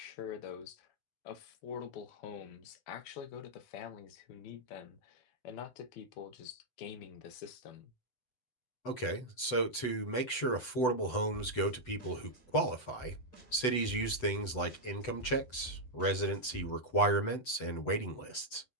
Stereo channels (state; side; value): late; right; 7.9 ms